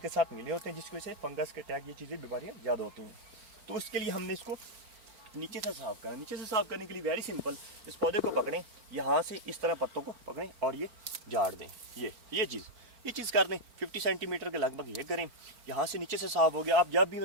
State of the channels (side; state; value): left; late; 4.4 ms